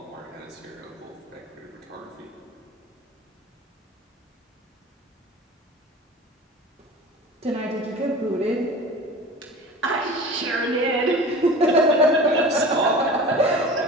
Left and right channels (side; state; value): both; normal; correlation 0.37